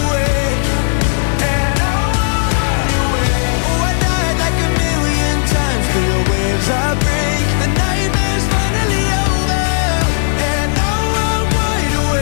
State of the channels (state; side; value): silent; right; digital silence